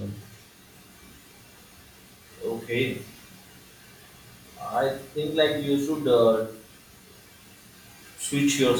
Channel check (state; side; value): identical; both; correlation 1.00